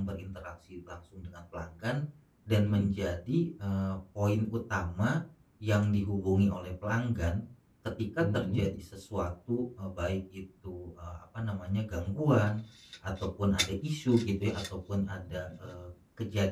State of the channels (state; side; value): identical; both; correlation 1.00